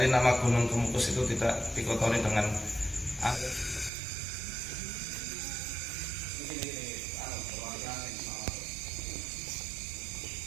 nama Gunung Kemukus itu tidak dikotori dengan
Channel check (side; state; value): left; drops out; at 3.9 s